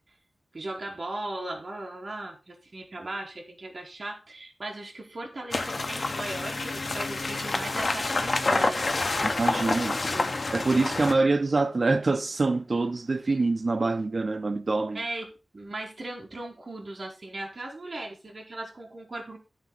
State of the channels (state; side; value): normal; both; correlation 0.95